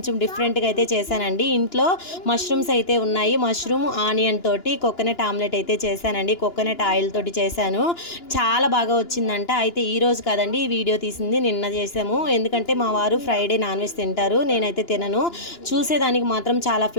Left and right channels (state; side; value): late; right; 2.9 ms